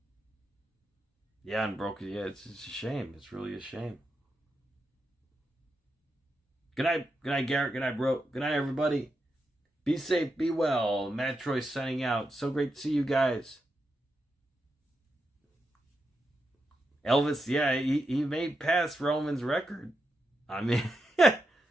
Yeah, Unbroken. Yeah, it's a shame. It's really a shame. Good night, Garrett. Good night, bro. Good night, everybody. Be safe, be well. MATTROISE signing out. So great to see you guys. Elvis, yeah, he made past Roman's record. I mean,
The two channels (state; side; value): normal; both; correlation 0.86